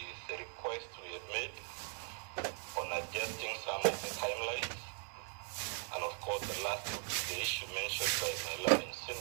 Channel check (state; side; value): silent; left; 51 dB below the other